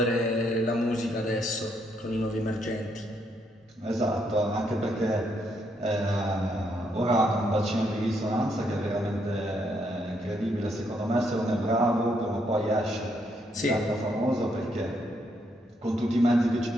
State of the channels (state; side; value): normal; both; correlation 0.75